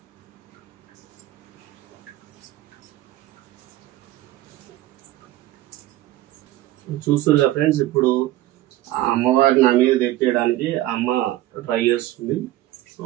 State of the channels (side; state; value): left; quieter; 15.5 dB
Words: చూస్తున్నారు ఫ్రెండ్స్, ఇప్పుడు అమ్మవారి నా మీద తెప్పేయడానికి అమ్మ ట్రై చేస్తుంది. సో